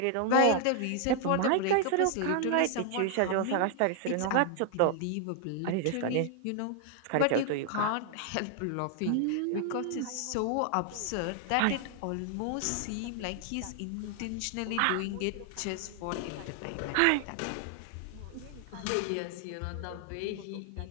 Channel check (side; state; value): both; different; correlation 0.00